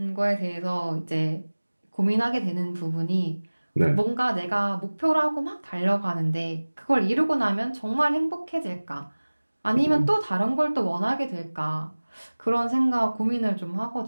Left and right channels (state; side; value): inverted; both; correlation -1.00